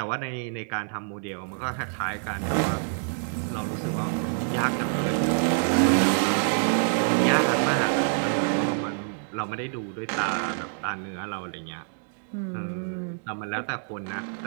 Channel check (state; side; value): silent; left; digital silence